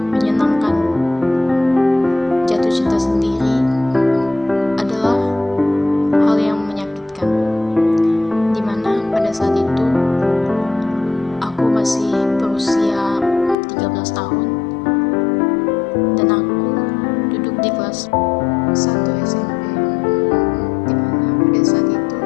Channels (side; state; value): right; drops out; at 13.6 s